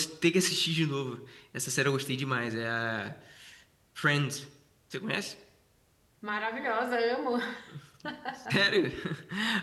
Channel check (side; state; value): both; identical; correlation 1.00